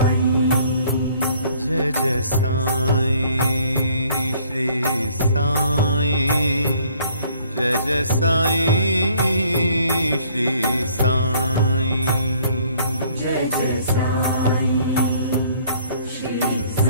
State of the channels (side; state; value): both; inverted; correlation -0.59